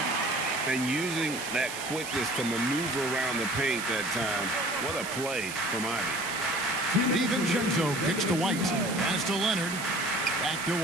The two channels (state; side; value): noise; right; hiss, 9 dB below the sound